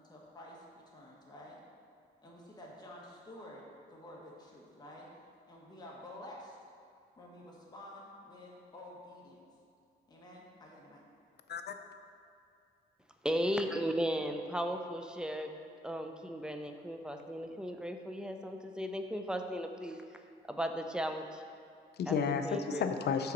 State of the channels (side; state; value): both; normal; correlation 0.64